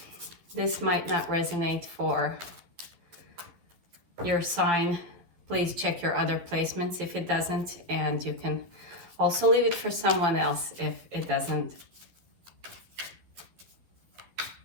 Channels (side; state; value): left; late; 12 ms